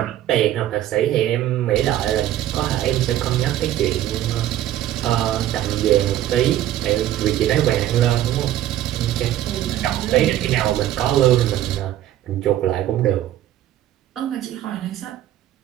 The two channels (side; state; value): left; quieter; 12.8 dB